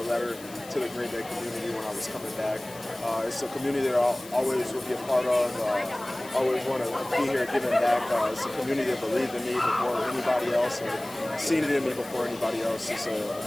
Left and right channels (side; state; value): left; noise; hiss, 18 dB below the sound